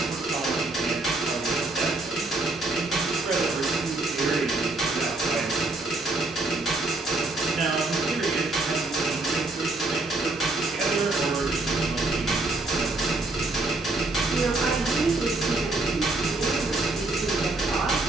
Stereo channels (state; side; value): quieter; left; 3.1 dB